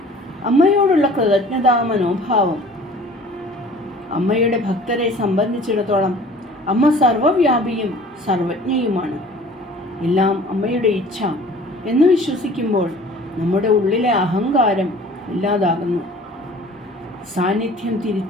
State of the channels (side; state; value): both; normal; correlation 0.48